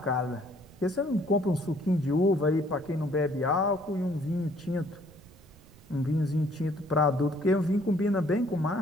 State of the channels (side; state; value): right; noise; rumble, 25 dB below the sound